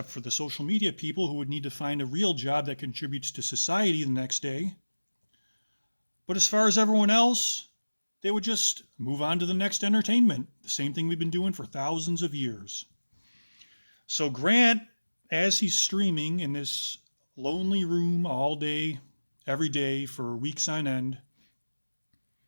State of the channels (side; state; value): both; inverted; correlation -1.00